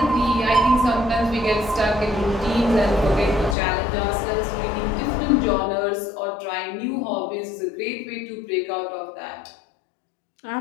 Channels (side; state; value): right; drops out; at 3.6 s